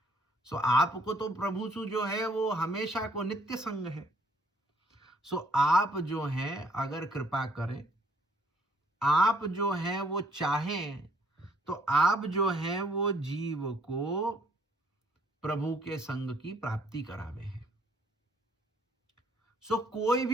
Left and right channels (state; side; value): normal; both; correlation 0.64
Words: सो आपको तो प्रभु सु जो है वो हमेशा को नित्य संग है। सो आप जो हैं अगर कृपा करें, आप जो हैं वो चाहें, तो आप जो हैं वो जीव को प्रभु के संग की प्राप्ति करावे हैं। सो कोई